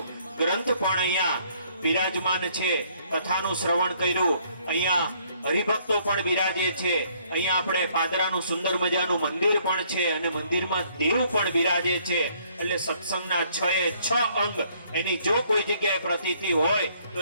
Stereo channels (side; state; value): both; inverted; correlation -0.64